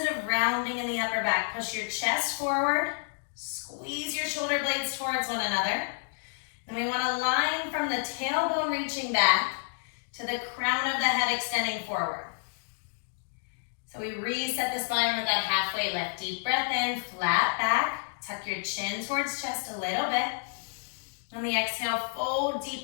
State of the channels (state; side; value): silent; right; digital silence